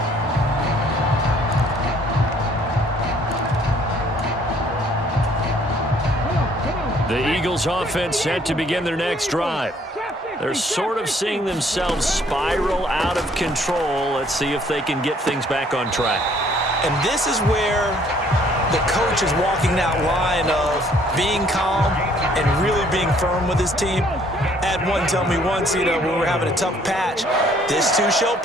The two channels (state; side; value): normal; both; correlation 0.61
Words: The Eagles offense set to begin their next drive. They're sort of seeing themselves spiral out of control. Let's see if they can get things back on track. And this is where the coach is walking that line of being calm and really being firm with his team. I had one tell me once, when we were having a tough patch, this too shall